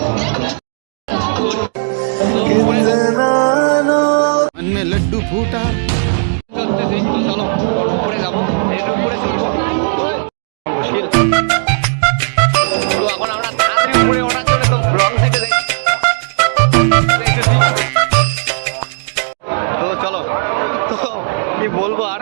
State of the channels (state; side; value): silent; left; digital silence